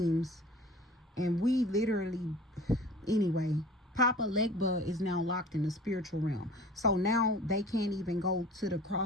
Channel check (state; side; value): normal; both; correlation 0.44